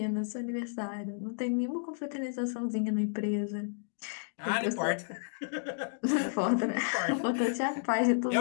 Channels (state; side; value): silent; right; digital silence